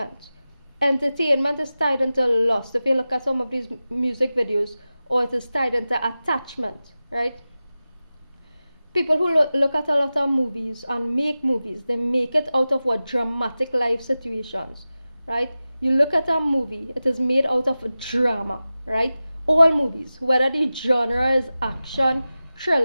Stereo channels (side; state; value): both; inverted; correlation -0.95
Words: Entertainment is tied into lust. If you look at some of these music videos, or it is tied into attachment, right? People who look at a lot of movies and make movies, they make it out of what? Dramatic life situations, right? You look at a movie, it is made out of drama, right? All movies, whether the genre is action,